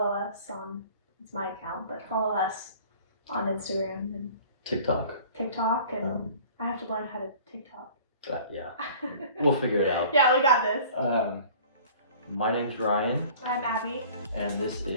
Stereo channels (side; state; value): both; inverted; correlation -0.47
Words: us on, it's my account, but follow us on Instagram and TikTok. TikTok, and I have to learn how to TikTok. Yeah, we'll figure it out. Yeah, we got this. My name's Ryan, I'm Abby, and this